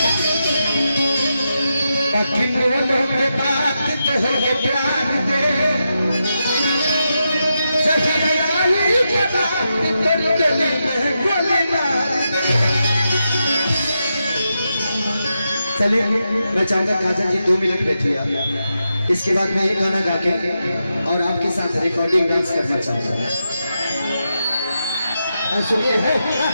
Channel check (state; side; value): inverted; both; correlation -0.87